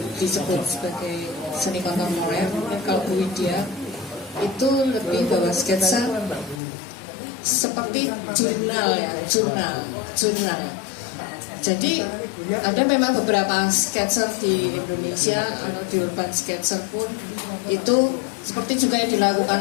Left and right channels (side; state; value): right; drops out; at 6.6 s